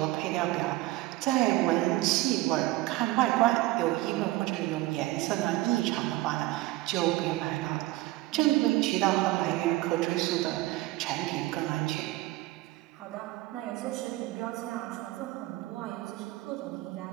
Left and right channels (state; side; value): quieter; left; 17.9 dB